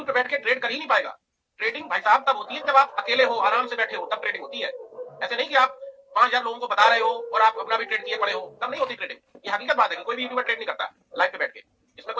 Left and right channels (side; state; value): both; identical; correlation 1.00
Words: पे बैठ के ट्रेड कर ही नहीं पाएगा। ट्रेडिंग भाई साहब तब होती है जब आप अकेले हो, आराम से बैठे हो, तब ट्रेडिंग होती है। ऐसे नहीं कि आप 5000 लोगों को बता रहे हो और आप अपना भी ट्रेड किए पड़े हो, तब नहीं होती ट्रेडिंग। ये हकीकत बात है कि कोई भी यूट्यूबर ट्रेड नहीं करता लाइव पे बैठ के, इसमें